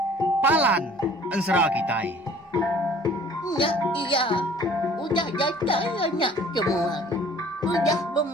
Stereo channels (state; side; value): normal; both; correlation 0.52